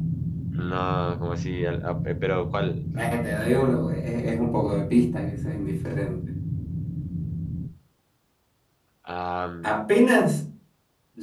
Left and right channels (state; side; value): identical; both; correlation 1.00